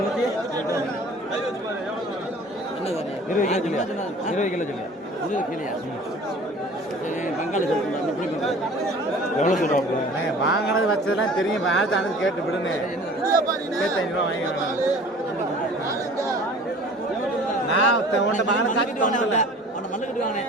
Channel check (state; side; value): normal; both; correlation 0.46